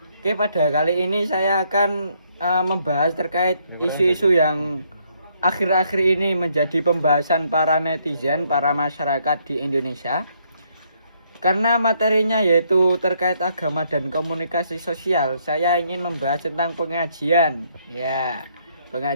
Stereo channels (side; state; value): both; inverted; correlation -0.71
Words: Oke, pada kali ini saya akan membahas terkait isu-isu yang akhir-akhir ini menjadi pembahasan para netizen, para masyarakat di Indonesia. Karena materinya yaitu terkait agama dan komunikasi sosial, saya ingin membahas tentang pengajian. Ya,